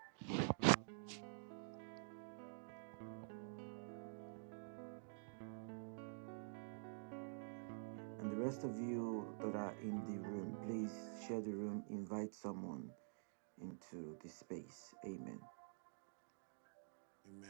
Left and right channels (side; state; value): left; silent; digital silence